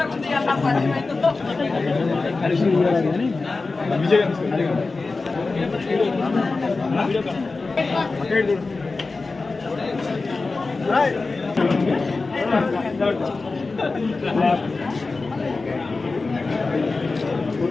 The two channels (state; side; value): quieter; right; 3.8 dB